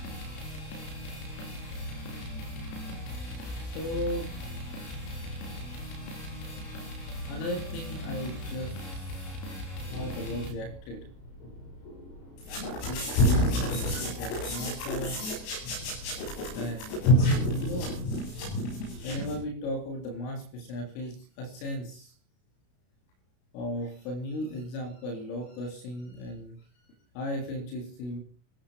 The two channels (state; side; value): late; right; 32 ms